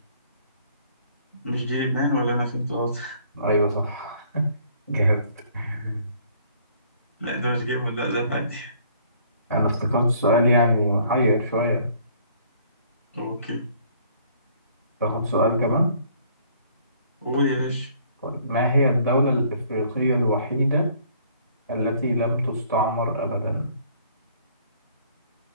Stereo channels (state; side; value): inverted; both; correlation -0.60